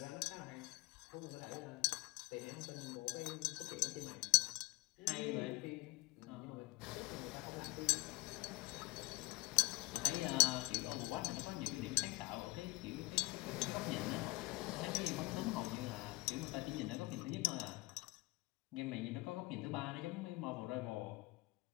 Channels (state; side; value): quieter; right; 23.4 dB